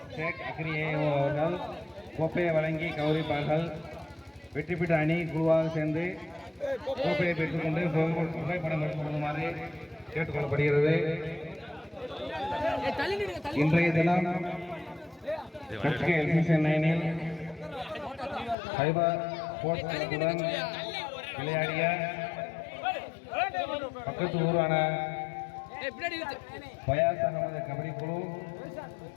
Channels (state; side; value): drops out; right; at 18.6 s